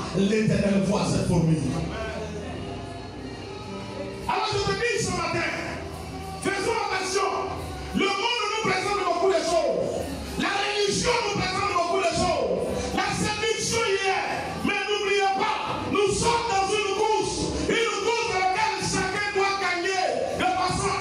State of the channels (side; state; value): both; identical; correlation 1.00